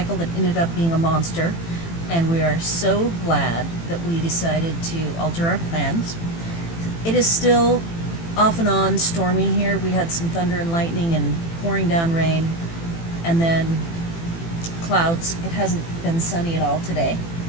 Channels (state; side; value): late; right; 18 ms